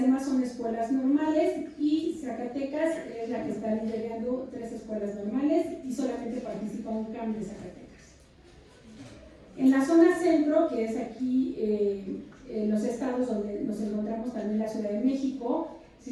demás son escuelas normales, y Zacatecas es la que está liderando 3 escuelas normales, y solamente participa un CAM de Zacatecas. En la zona centro, que es aquí en los estados donde nos encontramos también la Ciudad de México,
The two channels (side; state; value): both; identical; correlation 1.00